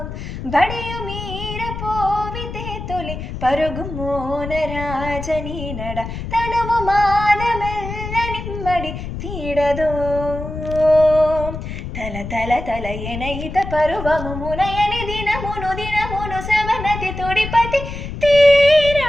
బడియు మీర పోవితే తొలి పరుగు మోనరాజని నడ తనువు మానమెల్ల నిమ్మడి తీడదో తల తల తల ఎనయిత పరువము మునయని దినమును దినమును సమనతి తొడిపతి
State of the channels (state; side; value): noise; left; rumble, 8 dB below the sound